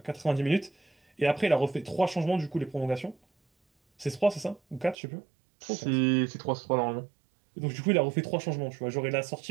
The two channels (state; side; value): drops out; left; at 5.0 s